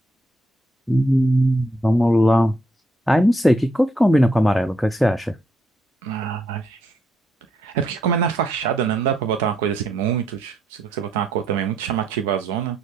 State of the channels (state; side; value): normal; both; correlation 0.75